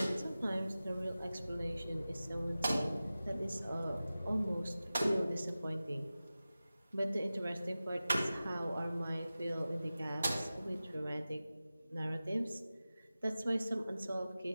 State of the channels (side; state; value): both; inverted; correlation -0.96